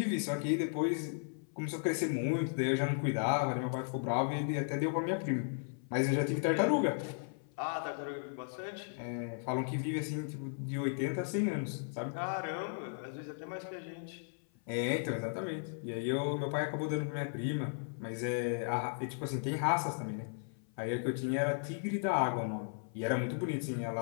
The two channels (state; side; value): silent; right; 54 dB below the other